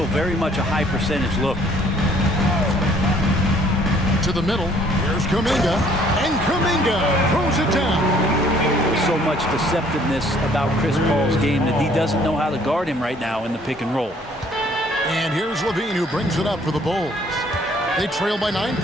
very much a high percentage look. To the middle. Here's Kuminga. And Kuminga throws it down. There's so much deceptiveness about Chris Paul's game that he doesn't know how to guard him right now in the pick and roll. And here's Levine who brings it up for the Bulls. They trail by 9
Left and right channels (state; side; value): normal; both; correlation 0.60